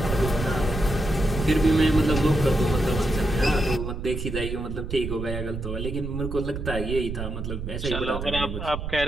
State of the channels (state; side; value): noise; right; rumble, 6 dB below the sound